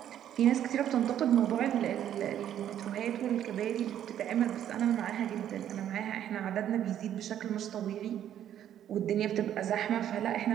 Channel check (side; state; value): left; quieter; 10.6 dB